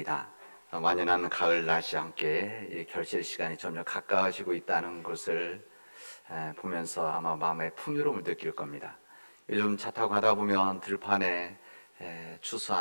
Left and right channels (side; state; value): both; inverted; correlation -1.00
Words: 완연한 가을 날씨 함께 이 결실 시간이 점점 가까워지고 있다는 것을 보면서 아마 마음의 풍요로움을 느낄 겁니다. 요즘 차 타고 가다 보면 들판에